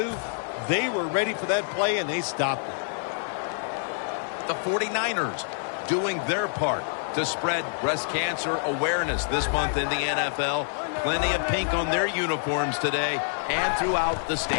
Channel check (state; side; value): silent; right; digital silence